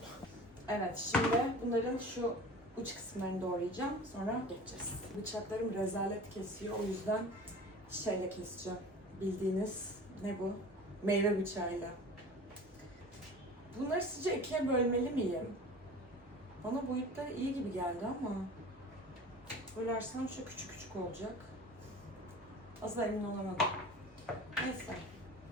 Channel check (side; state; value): both; normal; correlation 0.39